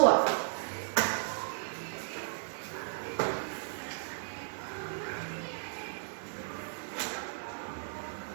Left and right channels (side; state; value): left; silent; digital silence